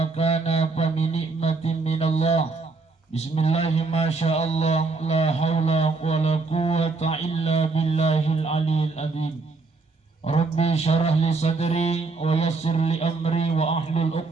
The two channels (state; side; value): quieter; left; 3.9 dB